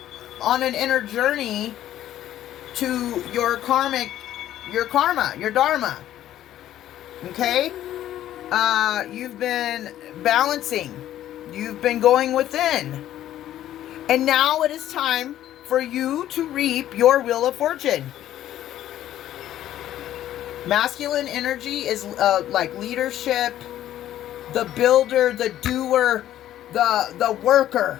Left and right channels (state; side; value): quieter; right; 12.4 dB